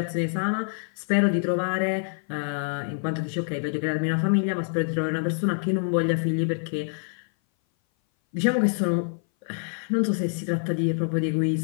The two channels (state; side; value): silent; right; 58 dB below the other